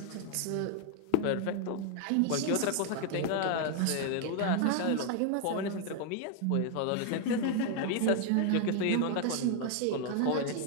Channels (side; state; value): both; different; correlation 0.01